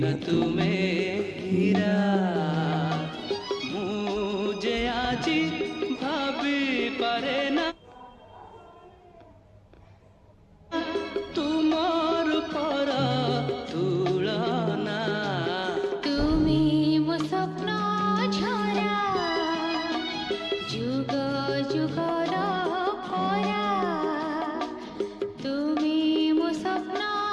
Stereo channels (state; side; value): identical; both; correlation 1.00